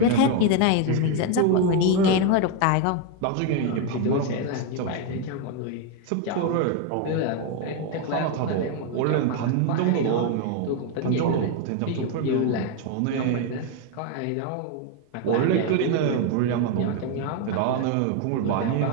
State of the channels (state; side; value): different; both; correlation 0.01